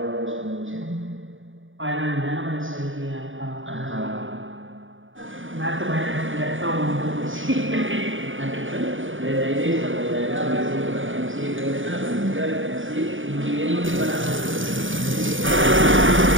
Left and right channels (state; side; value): late; left; 0.57 ms